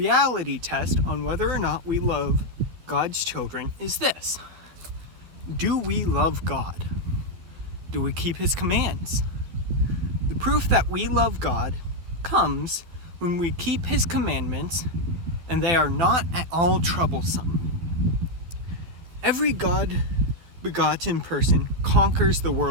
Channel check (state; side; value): late; left; 12 ms